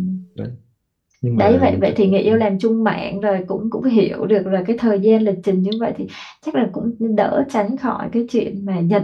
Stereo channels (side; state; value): both; identical; correlation 1.00